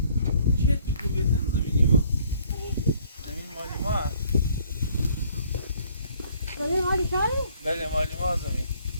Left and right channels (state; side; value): inverted; both; correlation -0.60